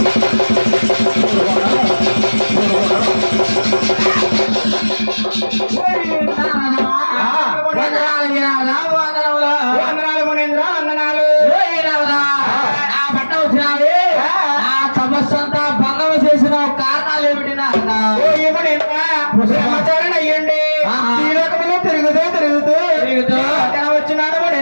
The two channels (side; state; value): both; inverted; correlation -1.00